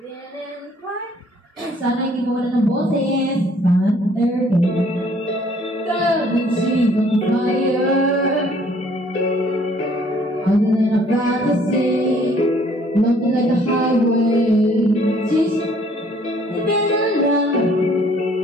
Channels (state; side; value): normal; both; correlation 0.60